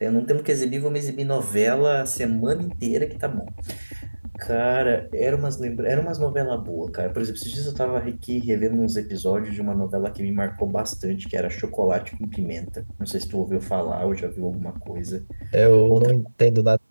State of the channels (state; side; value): inverted; both; correlation -1.00